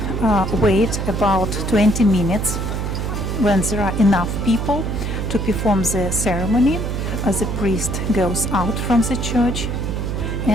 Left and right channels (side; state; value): right; noise; hum, 2 dB below the sound